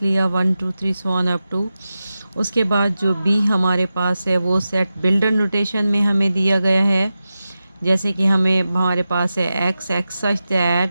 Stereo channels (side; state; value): both; inverted; correlation -0.92